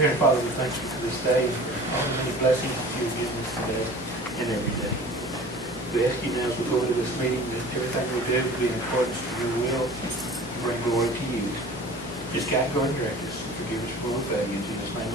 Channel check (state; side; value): normal; both; correlation 0.42